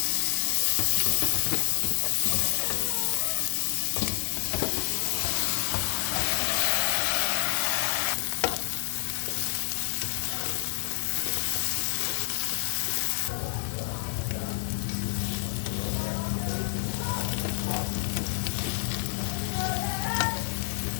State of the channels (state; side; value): silent; right; digital silence